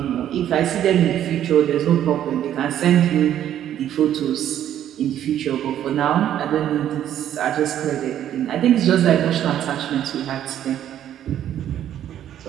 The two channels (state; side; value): quieter; left; 11.0 dB